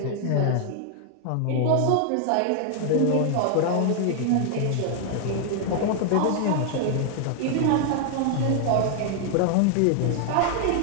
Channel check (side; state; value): both; different; correlation 0.00